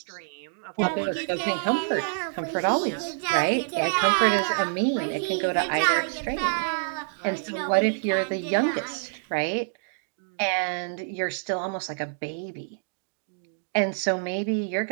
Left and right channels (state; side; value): silent; left; digital silence